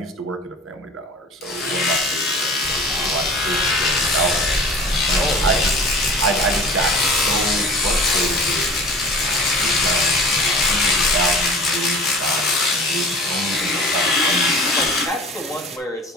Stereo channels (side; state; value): both; normal; correlation 0.40